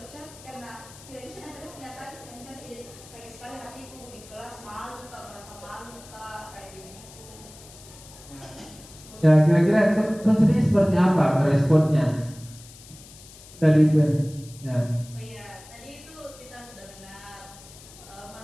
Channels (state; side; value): noise; left; hiss, 20 dB below the sound